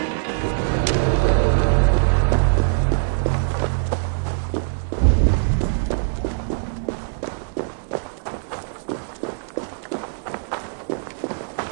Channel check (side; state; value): left; silent; digital silence